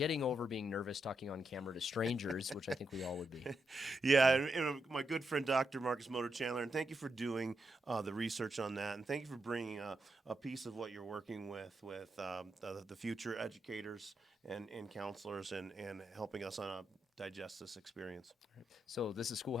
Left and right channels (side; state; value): both; normal; correlation 0.84